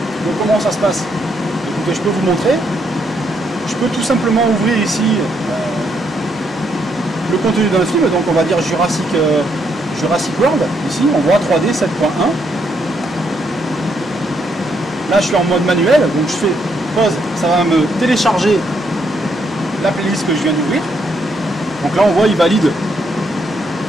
donc comment ça se passe? Écoutez, je peux vous montrer. Je peux tout simplement ouvrir ici le contenu d'un film, donc on va dire Jurassic World, ici on voit 3D 7.1. Là je suis en mode manuel, donc je fais pause, ça va me télécharger la playlist que je viens d'ouvrir. Donc là on voit il valide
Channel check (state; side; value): normal; both; correlation 0.75